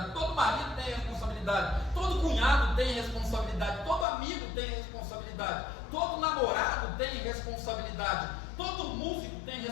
todo marido tem responsabilidade, todo cunhado tem responsabilidade, todo amigo tem responsabilidade, todo namorado tem responsabilidade, todo músico tem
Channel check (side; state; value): right; drops out; at 4.0 s